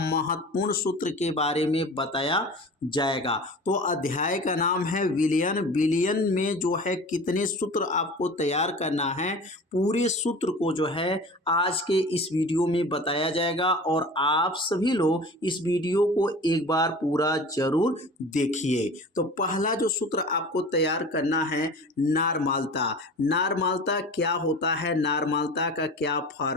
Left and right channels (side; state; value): both; normal; correlation 0.38